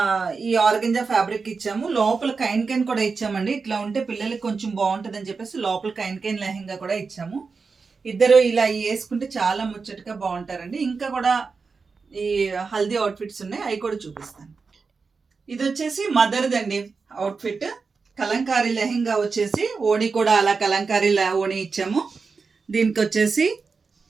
ఈ ఆర్గంజా ఫ్యాబ్రిక్ ఇచ్చాము. లోపల కైన్ కైన్ కూడా ఇచ్చామండి. ఇట్లా ఉంటే పిల్లలకి కొంచెం బాగుంటుంది అని చెప్పేసి లోపల కైన్ కైన్ లెహంగా కూడా ఇచ్చాము. ఇద్దరు ఇలా వేసుకుంటే చాలా ముచ్చటగా బాగుంటారండి. ఇంకా కూడా ఈ హల్దీ అవుట్ఫిట్స్ ఉన్నాయి, అవి కూడా చూపిస్తాను. ఇది వచ్చేసి మదర్దండి అవుట్ఫిట్. కలంకారీ లెహంగా వచ్చేసి ఓణి కూడా అలా కలంకారీ ఓణి ఇచ్చాము. దీనికి వచ్చేసి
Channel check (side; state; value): left; quieter; 4.8 dB